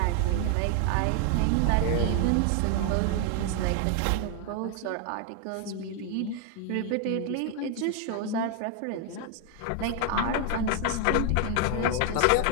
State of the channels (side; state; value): both; different; correlation 0.00